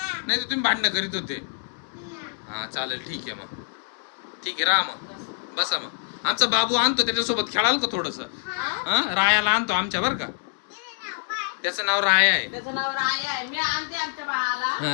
नाही तर तुम्ही भांडणं करीत होते. हा चालेल, ठीक आहे मग. ठीक आहे, राहा मग, बसा मग. आमचा बाबू आणतो, त्याच्यासोबत खेळाल का थोडस? रायाला आणतो आमच्या बर का. त्याचं नाव राया आहे.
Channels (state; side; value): silent; right; digital silence